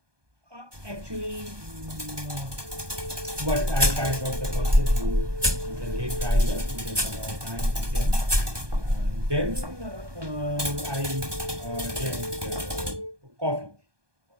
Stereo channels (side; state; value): left; late; 1.2 ms